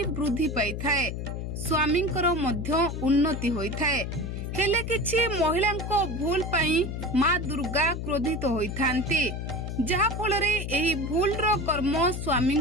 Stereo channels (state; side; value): noise; left; hum, 5 dB below the sound